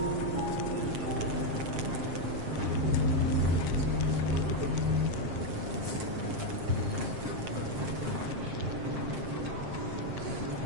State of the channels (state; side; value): late; left; 7.5 ms